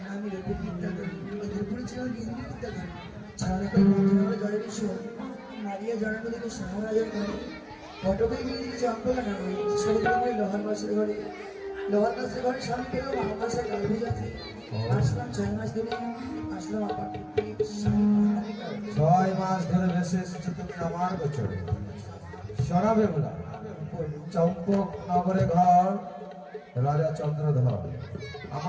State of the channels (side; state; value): both; identical; correlation 1.00